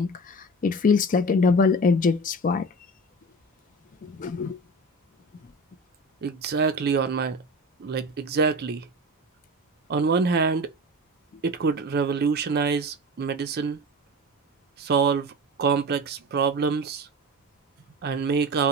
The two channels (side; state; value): both; normal; correlation 0.31